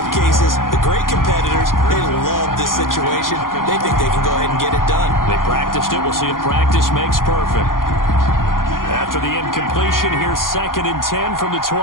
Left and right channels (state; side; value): late; right; 0.91 ms